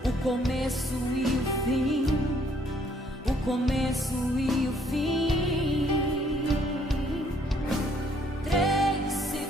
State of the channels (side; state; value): both; normal; correlation 0.65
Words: o começo e o fim, o começo e o fim. Três se